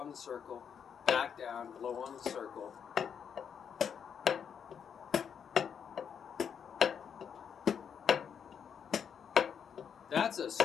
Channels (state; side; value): quieter; right; 7.5 dB